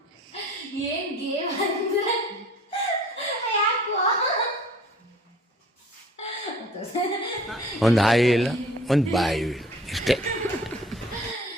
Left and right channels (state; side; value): normal; both; correlation 0.50